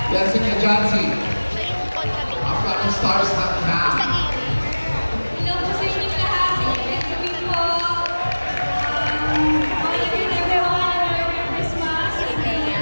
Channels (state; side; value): inverted; both; correlation -1.00